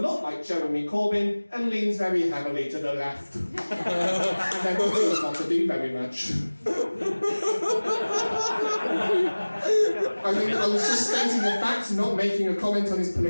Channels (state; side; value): inverted; both; correlation -1.00